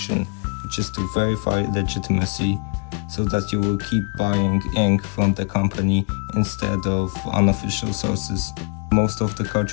which is to verify legitimacy, so that you will keep buying ink from the company instead of unofficial sources. Most of the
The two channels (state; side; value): quieter; right; 34.9 dB